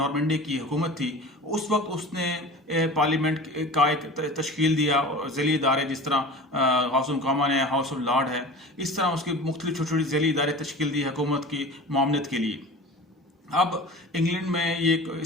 की हुकूमत थी, उस वक्त उसने पार्लियामेंट का एक तश्कील दिया, ज़ैली इदारे जिस तरह हाउस ऑफ कॉमन है, हाउस ऑफ लॉर्ड है, इस तरह उसके मुख्तलिफ छोटी छोटी ज़ैली इदारे तश्कील दी हुकूमत की मामलत के लिए। अब इंग्लैंड में ये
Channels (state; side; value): normal; both; correlation 0.37